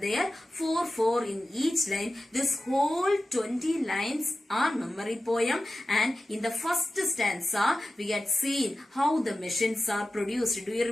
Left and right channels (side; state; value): both; normal; correlation 0.94